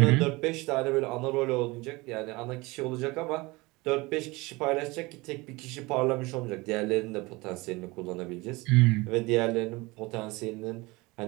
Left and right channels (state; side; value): quieter; left; 23.3 dB